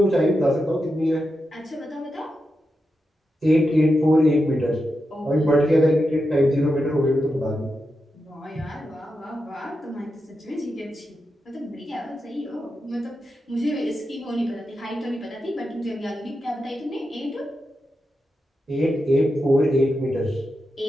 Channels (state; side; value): normal; both; correlation 0.88